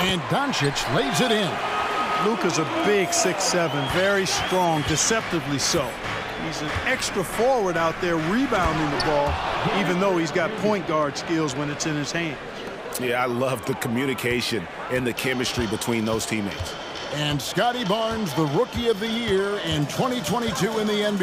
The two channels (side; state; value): both; identical; correlation 1.00